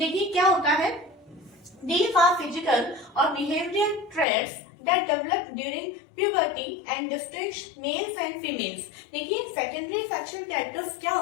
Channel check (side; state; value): right; drops out; at 4.2 s